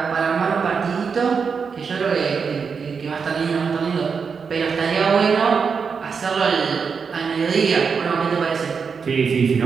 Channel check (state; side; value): quieter; left; 5.8 dB